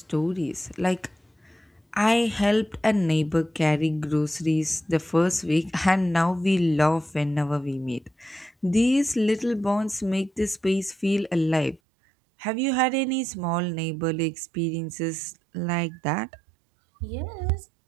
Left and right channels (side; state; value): left; drops out; at 11.8 s